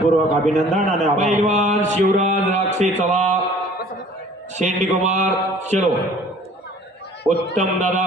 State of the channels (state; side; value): normal; both; correlation 0.50